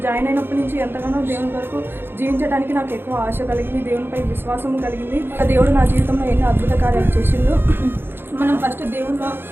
అయినప్పటి నుంచి ఎంతగానో దేవుని కొరకు జీవించడానికి నాకు ఎక్కువ ఆశ కలిగింది, దేవునిపై విశ్వాసం కలిగింది. దేవుడు నా జీవితంలో ఎన్నో అద్భుత కార్యాలు చేసిండు. మనం ఫస్ట్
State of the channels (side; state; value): left; late; 0.10 ms